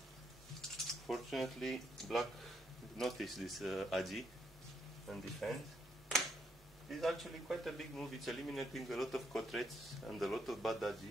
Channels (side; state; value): both; normal; correlation 0.75